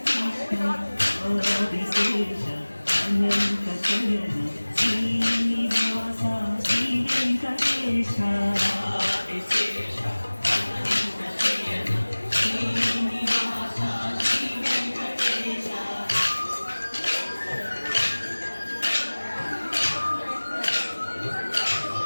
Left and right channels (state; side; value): inverted; both; correlation -1.00